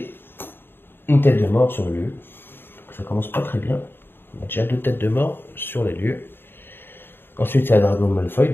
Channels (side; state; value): right; late; 0.10 ms